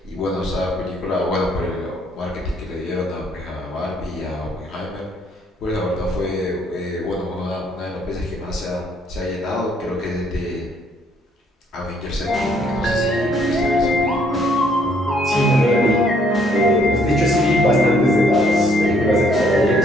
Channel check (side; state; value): both; normal; correlation 0.66